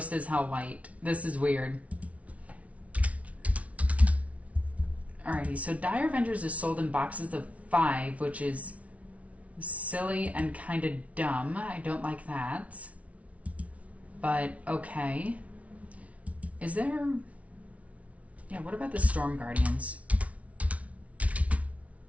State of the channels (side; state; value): left; late; 0.066 ms